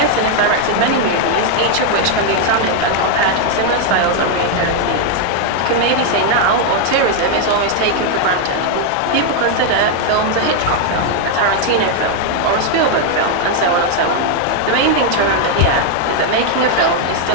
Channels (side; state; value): both; different; correlation 0.00